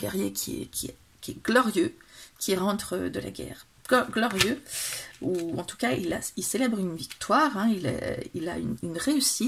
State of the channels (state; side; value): identical; both; correlation 1.00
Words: qui est glorieux, qui rentre de la guerre. Glorieux, ou en tout cas, il célèbre une victoire, hein, il a une